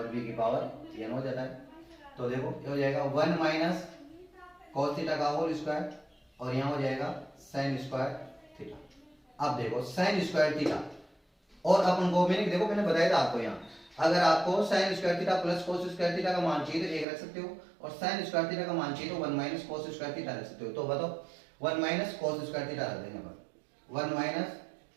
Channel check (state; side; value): drops out; left; at 17.1 s